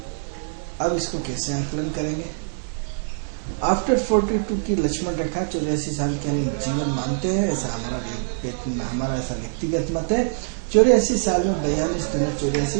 अब इसको कैसे आकलन करेंगे? आफ्टर 42 की लक्ष्मण रेखा 84 साल के हम जीवन मानते हैं, ऐसा हमारा ऐसा व्यक्तिगत मत है। 84 साल में 42 दिन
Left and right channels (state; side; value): silent; left; 63 dB below the other